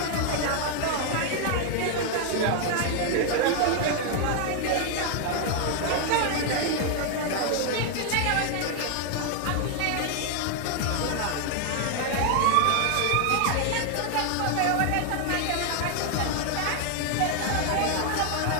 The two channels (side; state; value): both; different; correlation 0.00